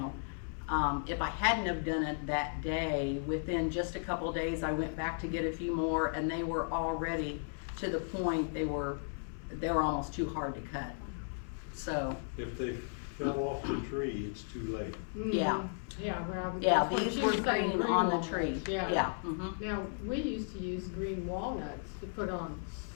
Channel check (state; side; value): silent; right; 54 dB below the other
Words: if I hadn't have done it that day, within just a couple days I went back to get a few more, and they were already to the point they were almost too hard to cut. So If they fell off the tree, it's too late. yeah. Yeah, well. Yeah, that's what these she were was saying, green on the walnuts. tree. Yeah. Yeah. Mhm. Now, we used to use green walnuts to put on